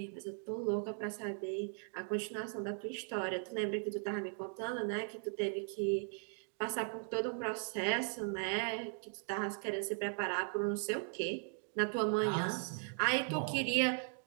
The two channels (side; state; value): left; silent; 52 dB below the other